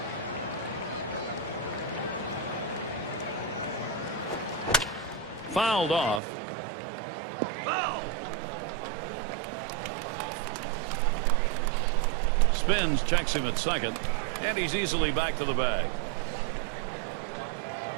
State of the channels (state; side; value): drops out; left; at 6.2 s